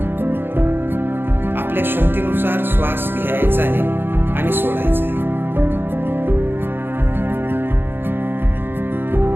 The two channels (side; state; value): left; late; 0.10 ms